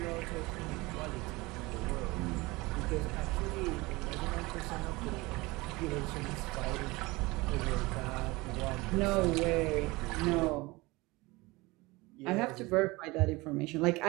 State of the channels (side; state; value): left; quieter; 22.5 dB